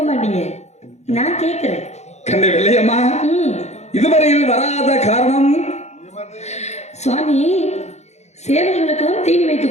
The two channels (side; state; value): right; late; 0.32 ms